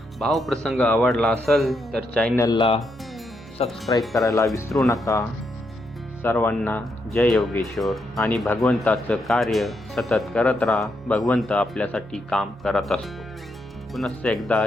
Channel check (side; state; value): both; normal; correlation 0.80